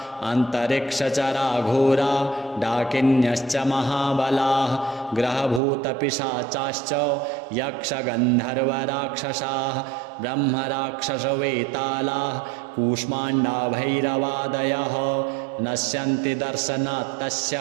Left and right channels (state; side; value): drops out; left; at 5.6 s